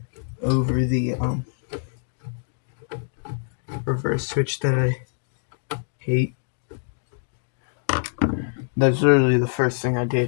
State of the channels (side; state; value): right; silent; digital silence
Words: over the reverse switch that I hate. That's literally the first thing I